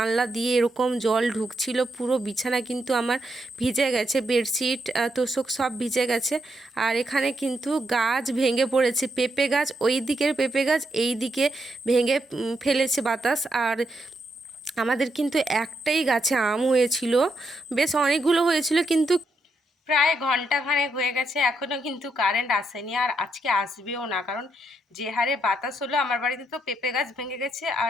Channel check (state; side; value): normal; both; correlation 0.80